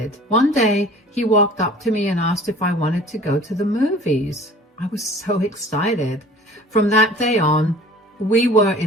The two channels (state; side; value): normal; both; correlation 0.47